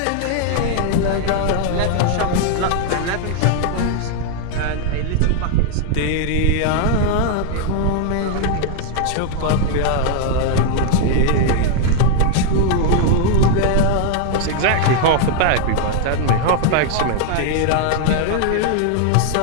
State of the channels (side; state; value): both; different; correlation 0.00